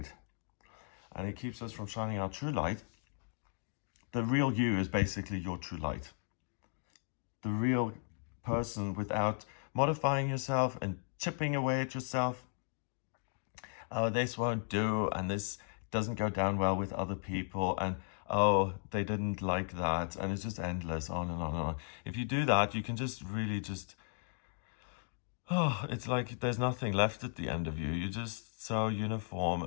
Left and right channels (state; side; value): silent; right; 54 dB below the other